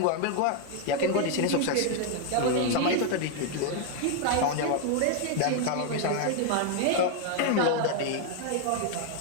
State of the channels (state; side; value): different; both; correlation 0.00